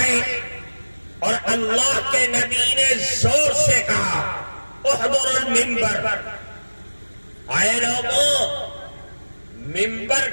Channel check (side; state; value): both; inverted; correlation -1.00